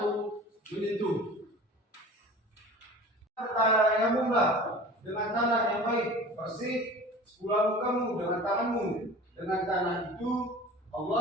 menyentuh, tayamumlah dengan tanah yang baik, bersih, sepulah mukamu dengan tanganmu. Dengan tanah itu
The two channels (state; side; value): normal; both; correlation 0.40